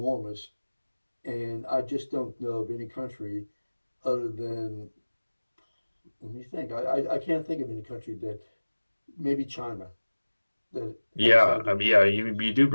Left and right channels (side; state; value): both; inverted; correlation -1.00